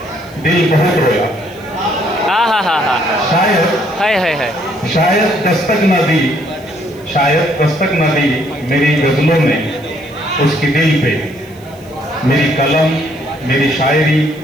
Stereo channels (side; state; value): right; noise; hiss, 28 dB below the sound